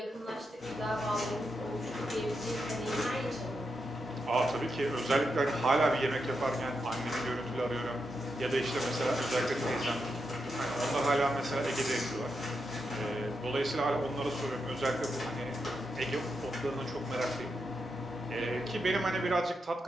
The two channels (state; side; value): normal; both; correlation 0.85